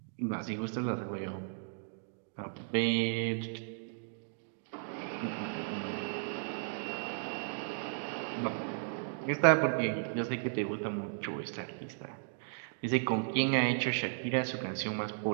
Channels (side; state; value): left; silent; digital silence